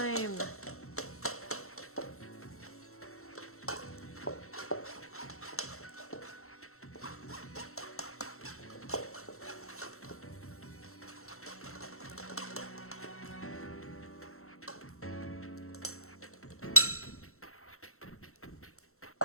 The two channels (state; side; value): late; right; 0.63 ms